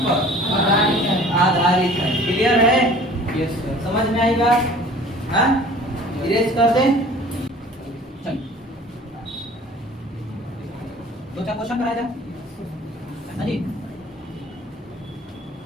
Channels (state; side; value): normal; both; correlation 0.47